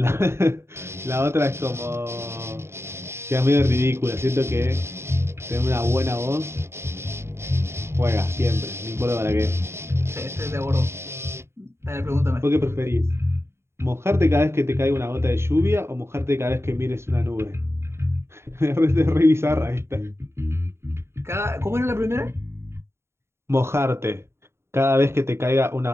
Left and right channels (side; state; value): left; late; 0.12 ms